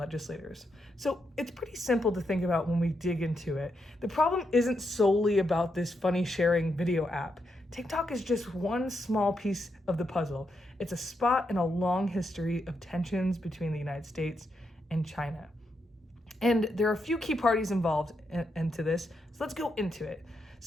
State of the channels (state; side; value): normal; both; correlation 0.82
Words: So it's pretty simple to think about when we dig into it. The problem isn't solely about this funny sharing video app. TikTok is just one small piece of the puzzle. It's a spot in a long history of tensions between the United States and China. And there are a few key parties involved into this, so let's go into it.